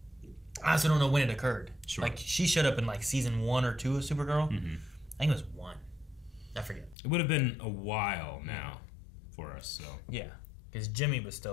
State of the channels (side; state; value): right; drops out; at 7.0 s